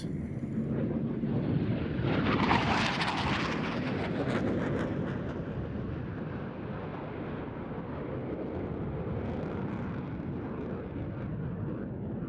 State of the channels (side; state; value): both; identical; correlation 1.00